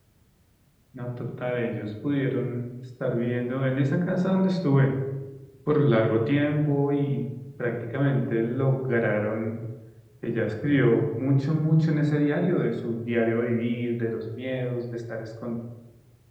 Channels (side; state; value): both; identical; correlation 1.00